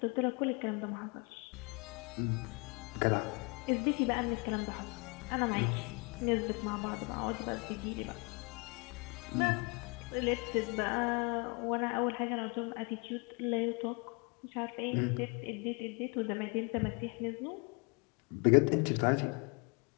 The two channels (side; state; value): right; quieter; 31.7 dB